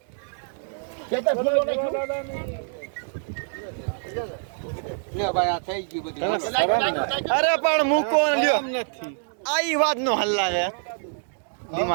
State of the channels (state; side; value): silent; left; 61 dB below the other